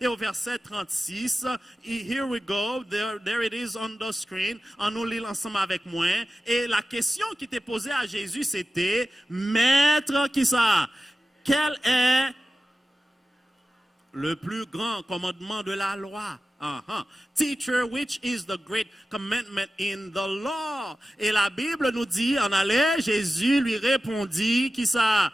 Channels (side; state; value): both; normal; correlation 0.94